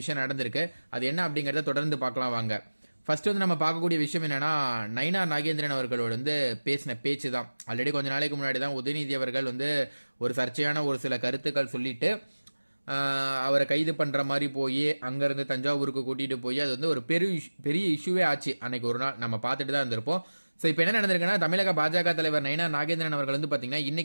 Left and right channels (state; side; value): inverted; both; correlation -1.00